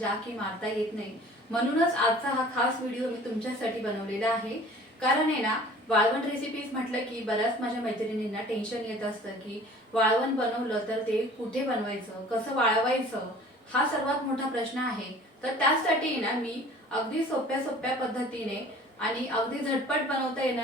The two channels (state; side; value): normal; both; correlation 0.47